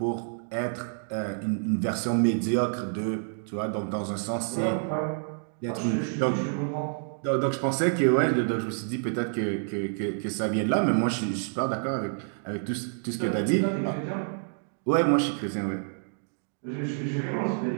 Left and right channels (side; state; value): left; silent; digital silence